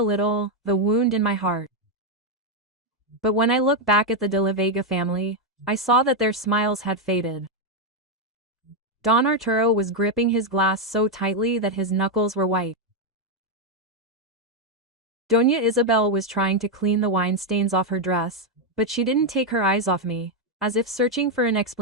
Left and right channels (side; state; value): both; normal; correlation 0.02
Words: little, the wound in my heart. But when I looked back at the De la Vega family, I saw that their smiles had faded. Don Arturo was gripping his glass so tightly that his knuckles were white. Doña Isabel was trying to clean the wine stains off her dress, but she didn't take her eyes off me, as if searching for an